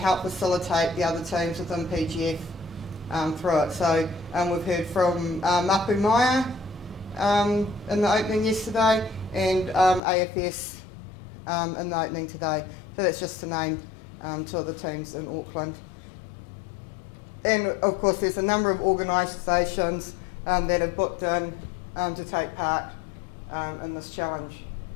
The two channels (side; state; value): right; drops out; at 10.0 s